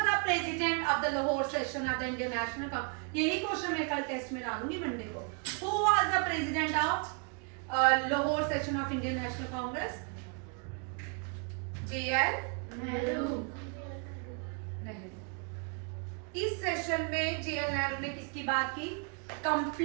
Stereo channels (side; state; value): left; quieter; 38.4 dB